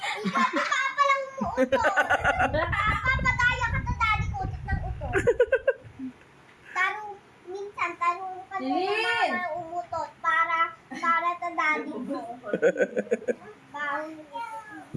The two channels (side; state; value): both; identical; correlation 1.00